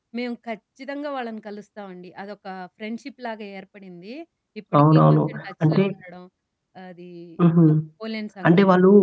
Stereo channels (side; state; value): both; identical; correlation 1.00